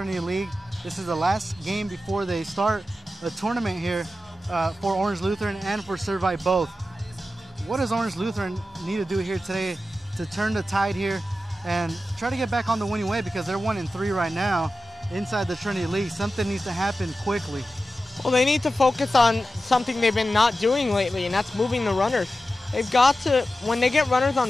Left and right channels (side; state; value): both; normal; correlation 0.93